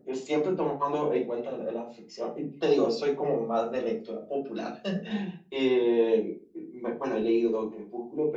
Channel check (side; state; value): both; identical; correlation 1.00